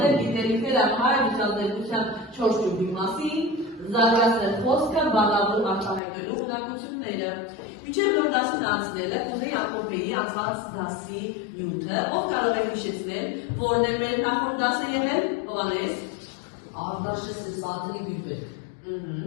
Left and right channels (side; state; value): right; drops out; at 6.0 s